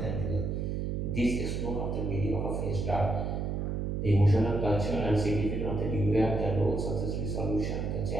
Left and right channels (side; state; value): right; noise; hum, 1 dB below the sound